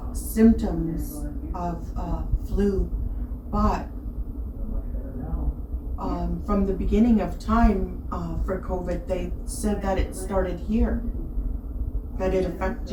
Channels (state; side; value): identical; both; correlation 1.00